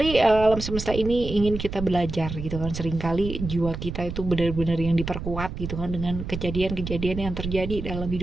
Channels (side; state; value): right; noise; rumble, 7 dB below the sound